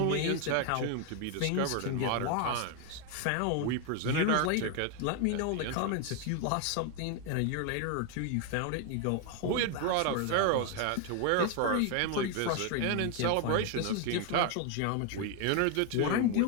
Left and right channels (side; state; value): both; different; correlation 0.01